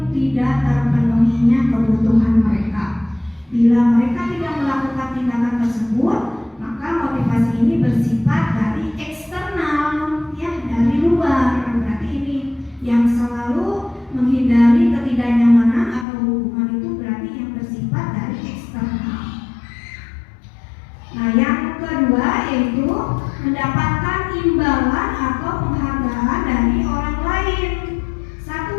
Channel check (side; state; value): right; drops out; at 16.1 s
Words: tidak terpenuhinya kebutuhan mereka. Bila mereka tidak melakukan tindakan tersebut, maka motivasi ini bersifat dari eksternal, ya, dari luar. Berarti ini yang selalu menghindari ketidaknyamanan atau hukuman itu berarti yang bersifat dari eksternal. Nah, yang kedua yaitu mendapatkan imbalan atau penghargaan dari orang lain.